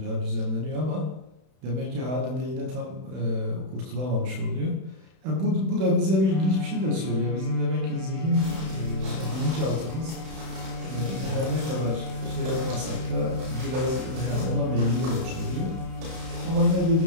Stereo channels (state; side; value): late; left; 31 ms